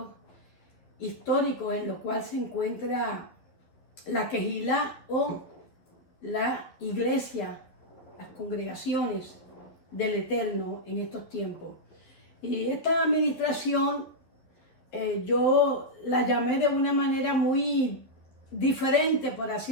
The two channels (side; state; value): right; late; 11 ms